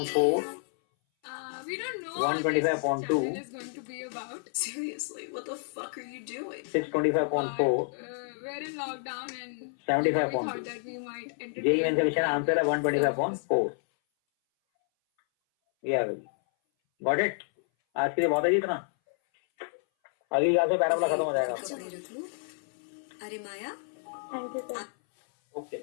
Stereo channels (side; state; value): right; silent; 58 dB below the other